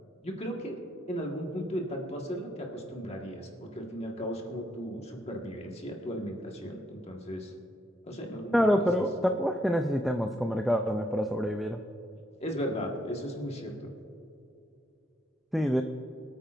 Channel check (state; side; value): normal; both; correlation 0.74